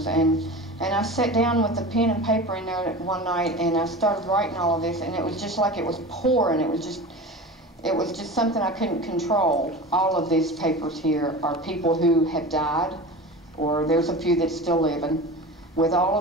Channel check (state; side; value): normal; both; correlation 0.32